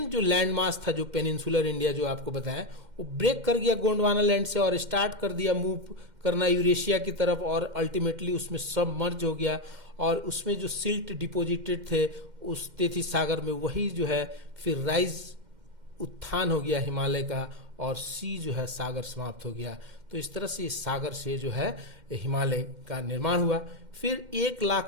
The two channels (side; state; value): left; late; 2.1 ms